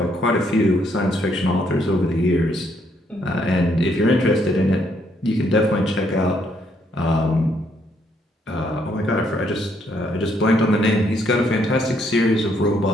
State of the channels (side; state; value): both; normal; correlation 0.71